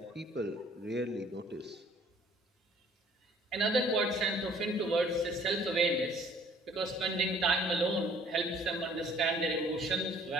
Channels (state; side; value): normal; both; correlation 0.57